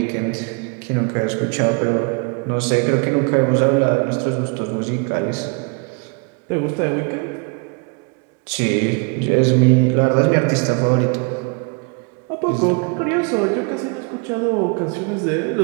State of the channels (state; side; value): quieter; left; 34.4 dB